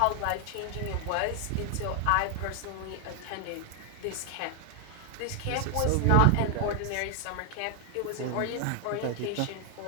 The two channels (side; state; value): both; different; correlation 0.00